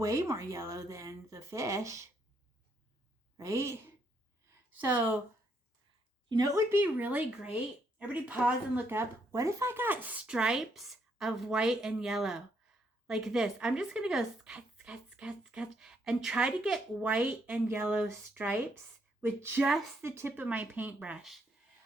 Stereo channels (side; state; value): both; normal; correlation 0.74